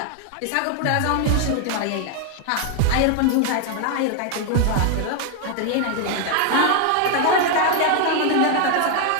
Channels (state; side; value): different; both; correlation 0.00